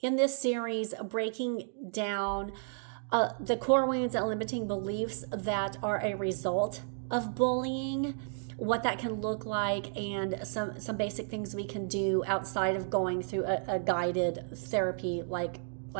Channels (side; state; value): left; silent; digital silence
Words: in this series, breaking down the core wounds and limiting beliefs that are a result of bullying, what that can look like, and some basic things we can do outside of going through a guided therapy like